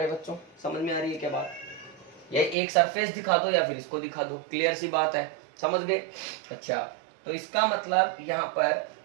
बच्चों? समझ में आ रही है क्या बात? ये एक सरफेस दिखा दो या फिर इसको दिखा दो, क्लियर सी बात है, समझ गए? अच्छा तो इसका मतलब यहां पर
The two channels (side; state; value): left; drops out; at 2.6 s